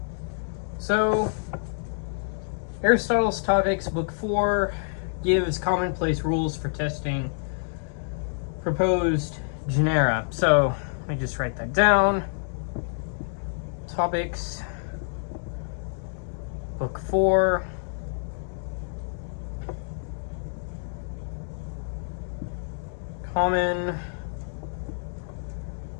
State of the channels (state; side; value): silent; right; digital silence